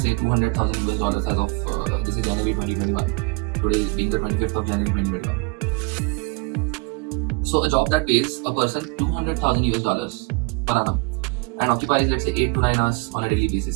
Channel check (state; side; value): quieter; left; 27.6 dB